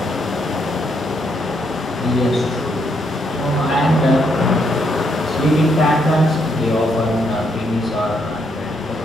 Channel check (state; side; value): normal; both; correlation 0.75